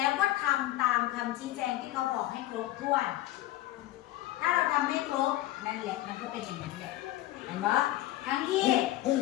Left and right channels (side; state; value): right; quieter; 15.4 dB